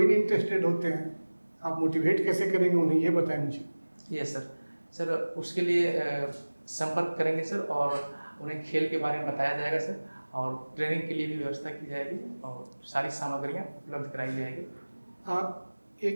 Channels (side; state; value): both; inverted; correlation -1.00